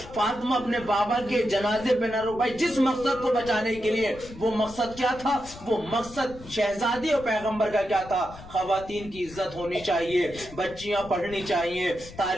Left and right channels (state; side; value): noise; left; rumble, 17 dB below the sound